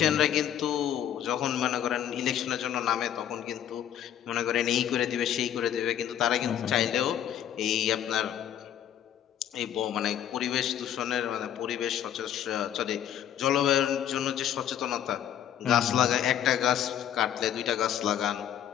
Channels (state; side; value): quieter; right; 10.2 dB